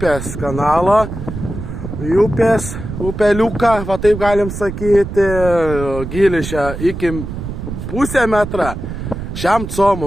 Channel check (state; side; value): noise; right; rumble, 7 dB below the sound